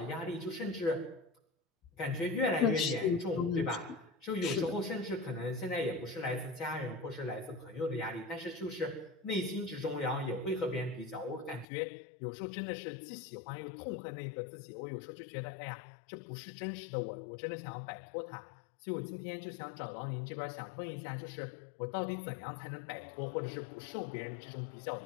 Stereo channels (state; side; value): drops out; right; at 11.7 s